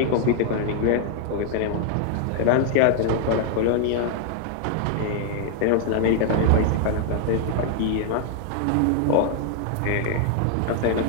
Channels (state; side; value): different; both; correlation 0.00